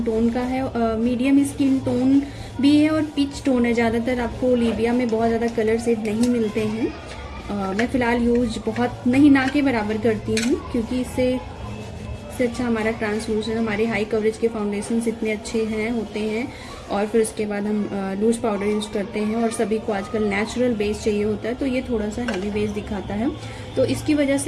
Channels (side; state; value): both; identical; correlation 1.00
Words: टोन का है। मीडियम स्किन टोन भी है और पिच टोन है। ज़्यादातर आपको ओलिविया में बहुत ज़्यादा कलर शेड नहीं मिलते हैं। मैं फ़िलहाल यूज बहुत नहीं, ना के बराबर करती हूँ, क्योंकि इससे अच्छा हमारा ट्रांसलूसेंट, हमारे हाई कवरेज के फाउंडेशंस इतने अच्छे होते हैं। और फिर उसके बाद हम लूज पाउडर यूज़ करते हैं, और सभी को आजकल नेचुरल बेस चाहिए होता है, तो ये थोड़ा सा हैवी बेस दिखाता है। तो इसकी वजह